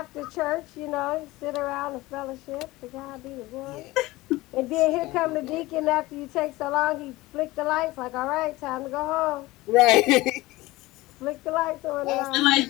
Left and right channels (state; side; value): quieter; right; 19.6 dB